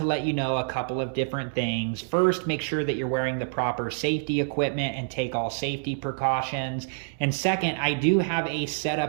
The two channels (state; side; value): silent; left; 60 dB below the other